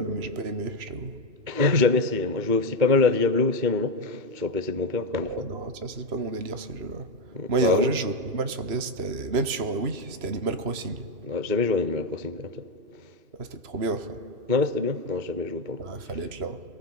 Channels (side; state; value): left; late; 3.0 ms